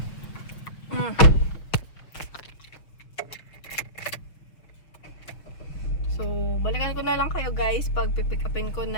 So, balikan ko na lang kayo guys pag pipick upin ko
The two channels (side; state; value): right; late; 6.2 ms